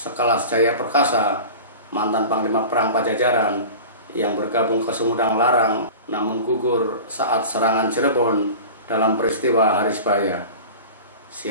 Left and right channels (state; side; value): inverted; both; correlation -0.35